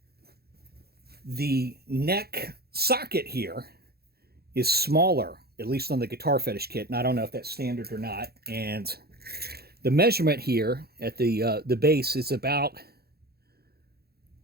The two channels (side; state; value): left; late; 0.46 ms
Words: The neck socket here is smaller, at least on the Guitar Fetish kit, and I don't know if that's standard or not. And the measurement here at the base is about,